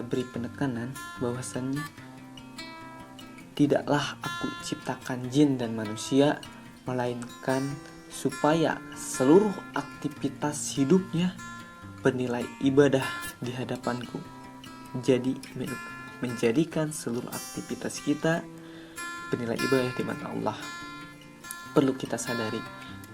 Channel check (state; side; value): identical; both; correlation 1.00